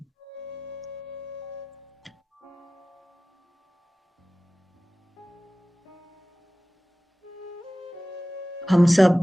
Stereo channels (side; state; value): both; normal; correlation 0.97